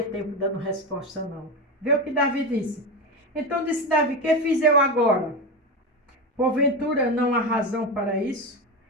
tempo dando resposta não. Vê o que Davi disse. Então disse Davi, que fiz eu agora? Porventura não há razão para isso?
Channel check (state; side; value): normal; both; correlation 0.18